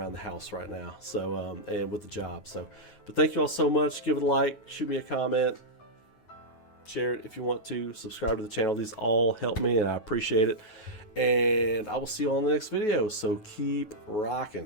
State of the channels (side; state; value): right; late; 9.3 ms